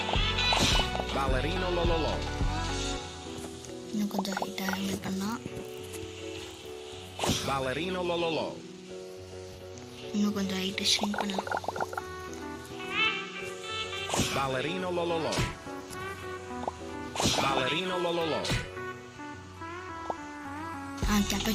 Ballerino lololo. இன்னும் கொஞ்சம் ஹைட்டாக ஹேண்டில் பண்ணால். Ballerino lololo. இன்னும் கொஞ்சம் ஹைட்டை ஷ்ரிங்க் பண்ணலாம். Ballerino lololo. Ballerino lololo.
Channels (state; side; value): identical; both; correlation 1.00